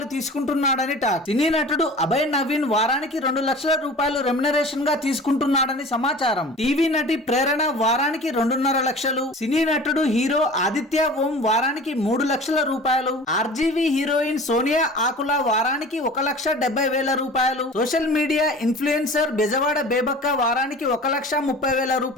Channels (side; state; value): both; normal; correlation 0.40